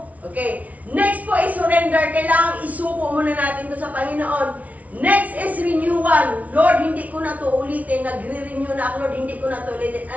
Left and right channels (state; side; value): late; left; 0.070 ms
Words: Okay. Next po is surrender. Kailangan isuko muna natin ito sa Panginoon. Next is renewal. Lord, hindi ko na ito ulitin. Nagre-renew na ako, Lord, hindi ko na ito ulitin.